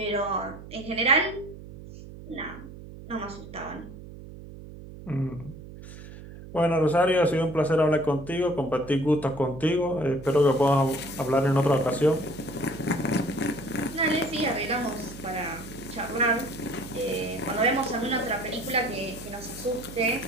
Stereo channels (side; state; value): right; noise; hum, 15 dB below the sound